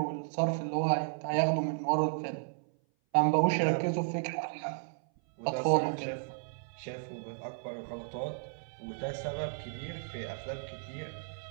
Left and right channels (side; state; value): left; silent; 55 dB below the other